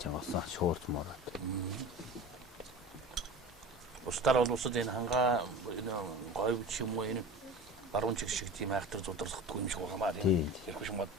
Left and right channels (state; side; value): normal; both; correlation 0.35